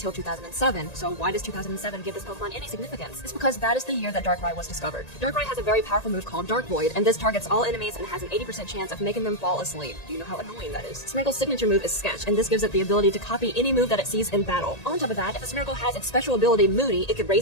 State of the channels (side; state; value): right; late; 1.8 ms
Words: 2007, so why does 2007 give this Pokemon any significance? It's because that is the year that Darkrai was discovered. Darkrai has a very powerful move called Dark Void, and this targets all enemies and has an 80% chance of making them fall asleep. Do you know how annoying that is? Smeargle's signature move is Sketch, and this gives it the ability to copy any move that it sees in battle. On top of that, if a Smeargle has its special ability Moody, it could